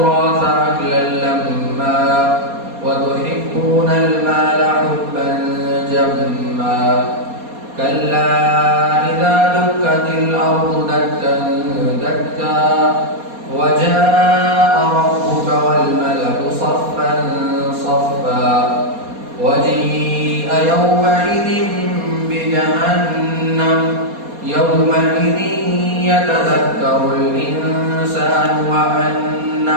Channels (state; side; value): late; left; 4.2 ms